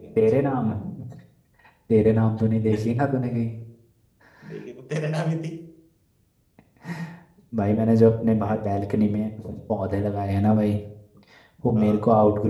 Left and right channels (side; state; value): both; identical; correlation 1.00